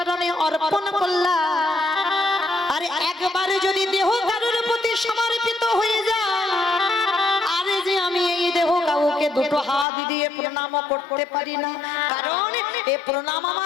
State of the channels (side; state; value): right; drops out; at 9.9 s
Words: অর্পণ করলাম, আর একবারে যদি দেহ কারোর প্রতি সমর্পিত হয়ে যায়, আরে যে আমি এই দেহ কাউকে দুটো হাত দিয়ে প্রণাম করতে পারি না, কারণ এ প্রণাম